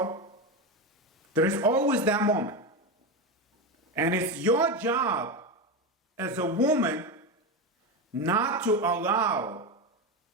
There is always that moment. And it's your job as a woman not to allow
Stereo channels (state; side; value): normal; both; correlation 0.16